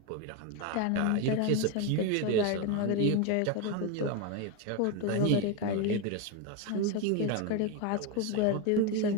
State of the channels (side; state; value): both; different; correlation 0.02